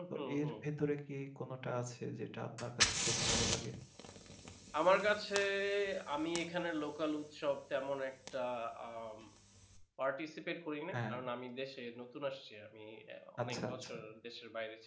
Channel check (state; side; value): identical; both; correlation 1.00